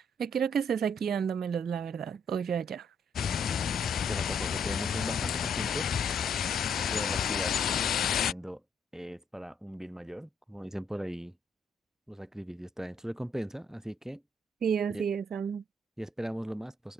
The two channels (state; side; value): normal; both; correlation 0.68